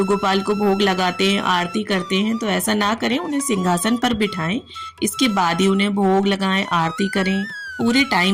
गोपाल को भोग लगाते हैं, आरती करते हैं। तो ऐसा ना करें, उन्हें सिंहासन पर बिठाएं, इसके बाद ही उन्हें भोग लगाएं, आरती करें। पूरे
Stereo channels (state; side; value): identical; both; correlation 1.00